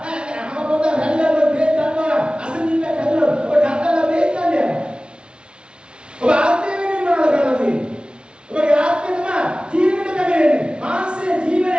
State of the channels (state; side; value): late; left; 0.056 ms